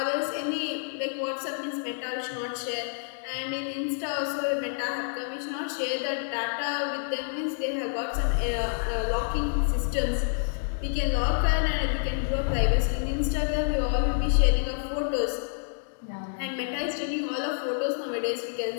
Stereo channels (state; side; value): silent; right; digital silence